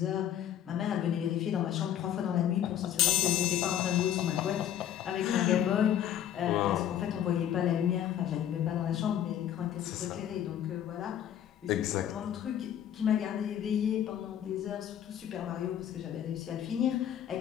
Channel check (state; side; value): quieter; right; 10.4 dB